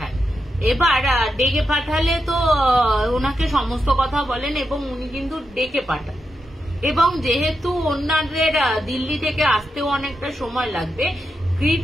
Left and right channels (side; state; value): both; normal; correlation 0.86